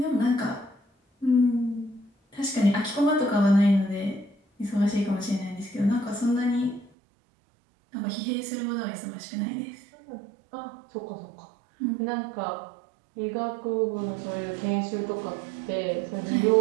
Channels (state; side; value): drops out; left; at 6.9 s